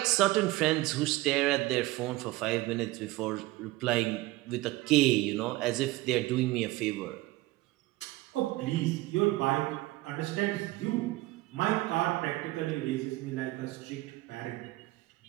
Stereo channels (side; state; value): left; quieter; 19.0 dB